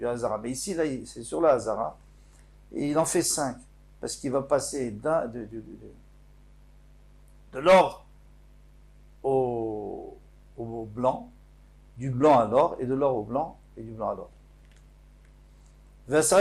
Hazara. Mais ici là, c'est sur la Hazara et il en fait 5 parce qu'il va passer de l'or au blanc, du blanc à l'or et de l'or au blanc et du blanc à l'or.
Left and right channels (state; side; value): identical; both; correlation 1.00